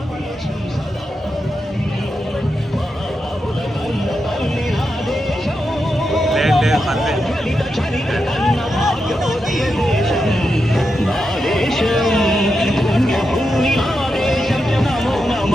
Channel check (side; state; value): both; normal; correlation 0.87